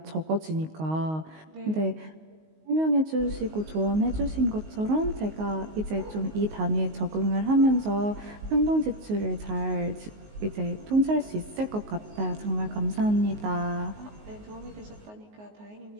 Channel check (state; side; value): late; left; 19 ms